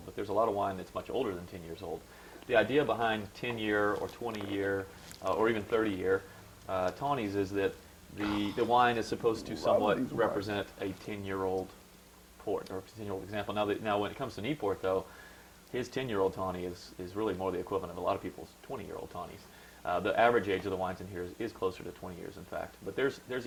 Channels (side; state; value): both; identical; correlation 1.00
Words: but there's a lot of wine that's much older than 10 years old. The idea behind 10-year or 20-year or even 30-year tawnies is that the wine is supposed to somewhat represent a 10-year-old port or a 10-year-old example. Now when it comes to Neipoort, though, his 10-year-old tawny is really more the equivalent of a lot of people's 20-year-old tawnies. The average age of the wines in here is closer to 20 years, in fact. But there's